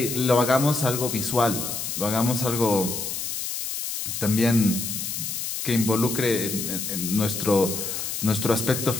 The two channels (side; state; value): left; noise; hiss, 4 dB below the sound